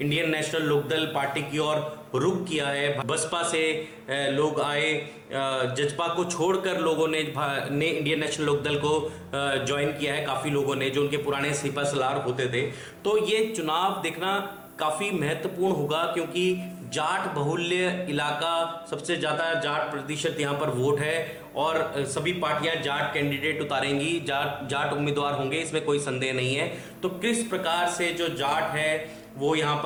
नेशनल लोकदल पार्टी की ओर रुख किया है। बसपा से लोग आए, जजपा को छोड़कर लोगों ने इंडियन नेशनल लोकदल को ज्वाइन किया है, काफ़ी लोगों ने, जो उनके पुराने सिपा सलार होते थे। तो ये चुनाव देखना काफ़ी महत्वपूर्ण होगा क्योंकि जाट बहुल्य इलाका, सबसे ज़्यादा जाट प्रतिशत यहाँ पर वोट है और सभी पार्टियां जाट कैंडिडेट उतारेंगी, जाट उम्मीदवार होंगे, इसमें कोई संदेह नहीं है। तो किस प्रकार से जो जाट है वो यहाँ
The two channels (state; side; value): identical; both; correlation 1.00